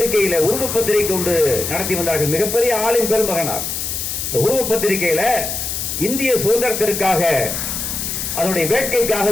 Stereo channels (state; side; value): noise; left; hiss, 3 dB below the sound